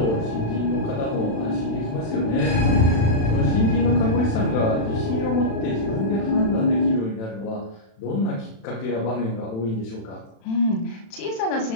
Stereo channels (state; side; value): late; right; 36 ms